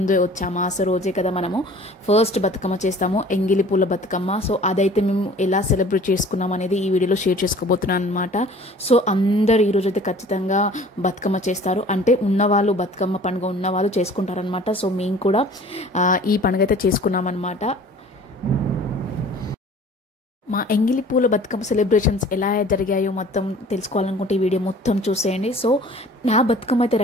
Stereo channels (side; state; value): both; normal; correlation 0.48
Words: వచ్చే అమాస రోజే కదా మనము ఫస్ట్ బతుకమ్మ చేస్తాము, ఎంగిలి పూల బతుకమ్మ. సో అదైతే మేము ఎలా సెలబ్రేట్ చేసుకున్నాం అనేది ఈ వీడియోలో షేర్ చేసుకోబోతున్నాను అనమాట. సో అందరు ఈరోజు అయితే ఖచ్చితంగా బతుకమ్మ చేస్తారు, అంటే ఉన్నవాళ్ళు బతుకమ్మ పండుగ ఉన్నవాళ్ళు చేసుకుంటారనమాట. సో మేము కూడా ఈ పండుగ అయితే చేసుకున్నాం అనమాట. మా ఎంగిలి పూల బతుకమ్మ సెలబ్రేషన్స్ ఎలా జరిగాయో మొత్తం తెలుసుకోవాలనుకుంటే ఈ వీడియో మొత్తం చూసేయండి. సో నా బతుకమ్మ అయితే